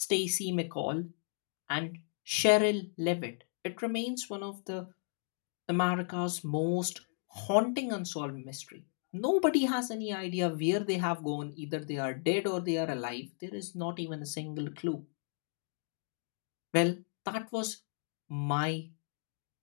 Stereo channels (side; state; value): right; silent; 55 dB below the other